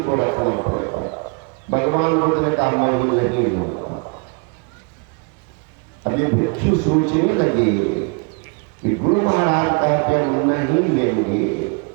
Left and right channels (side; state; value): left; quieter; 33.4 dB